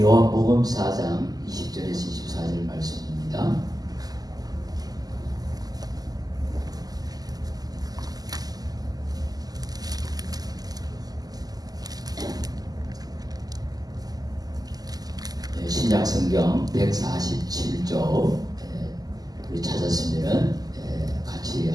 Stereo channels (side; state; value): left; late; 0.18 ms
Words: 4장 20절에서 24절 말씀입니다. 신약성경 147조 우리 찾았으면 같이